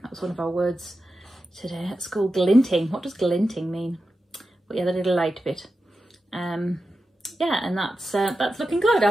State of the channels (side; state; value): both; normal; correlation 0.91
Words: That was one of our words today at school, glinting. What does glinting mean? But yeah, the little light bit. Yeah, and that's looking good.